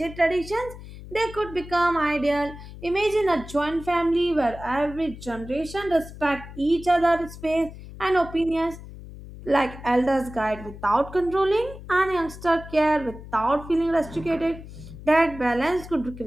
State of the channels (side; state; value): left; noise; hum, 14 dB below the sound